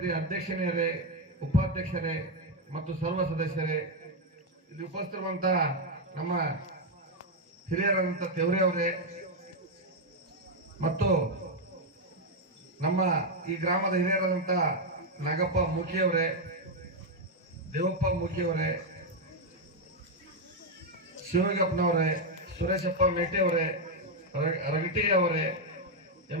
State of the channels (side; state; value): both; normal; correlation 0.03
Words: ಅಧ್ಯಕ್ಷರೇ, ಉಪಾಧ್ಯಕ್ಷರೇ ಮತ್ತು ಸರ್ವ ಸದಸ್ಯರೇ, ಇಲ್ಲಿ ಉಪಸ್ಥಿತಿರುವಂತಹ ನಮ್ಮ ಹಿರಿಯರಾದಂಥ ತೆವರೆ ಅವರೇ ಮತ್ತು ನಮ್ಮ ಈ ಗ್ರಾಮದ ಹಿರಿಯರಾದಂಥ ನಾಗಪ್ಪ ಮೂಕಿಯವರೇ, ದೇವಪ್ಪ ಮೂಕಿಯವರೇ, ಶಿವಗಪ್ಪನವರೇ, ಸುರೇಶಪ್ಪ ಮೇಟಿ ಅವರೇ, ರಗಟಿ ಅವರೇ,